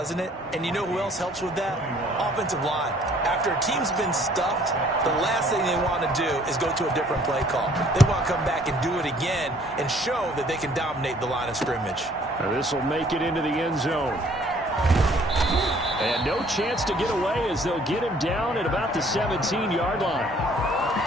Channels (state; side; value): normal; both; correlation 0.58